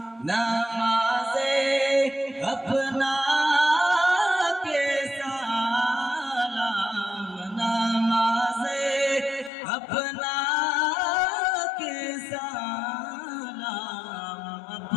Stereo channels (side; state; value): right; drops out; at 9.5 s